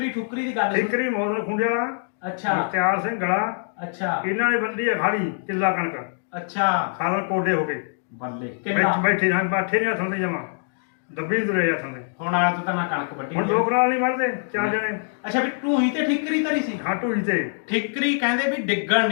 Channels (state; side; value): silent; right; digital silence